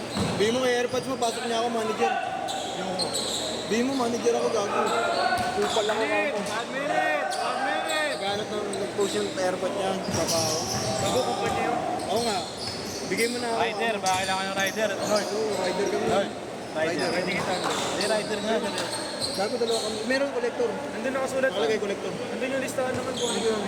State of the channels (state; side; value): identical; both; correlation 1.00